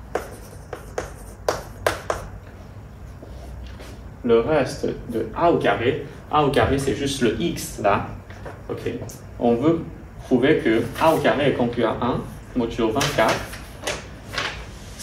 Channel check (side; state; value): both; identical; correlation 1.00